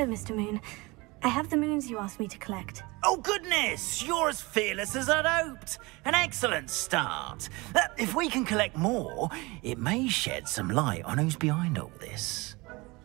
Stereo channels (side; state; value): left; quieter; 24.1 dB